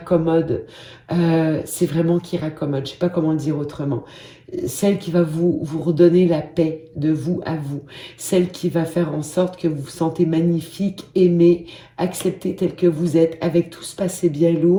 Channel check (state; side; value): identical; both; correlation 1.00